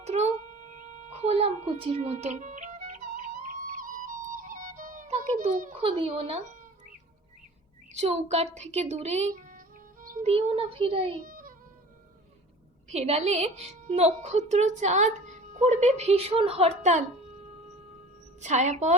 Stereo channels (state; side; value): normal; both; correlation 0.42